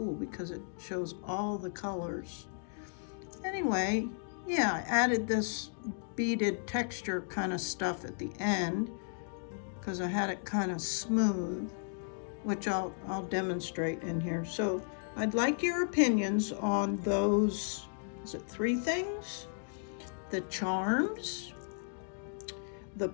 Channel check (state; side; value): silent; right; digital silence